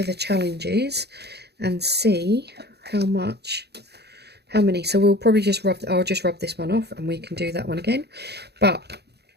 the challenges and see how many. So we'll probably just I'll just rub this one off and we can do that one again. But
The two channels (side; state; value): left; late; 0.48 ms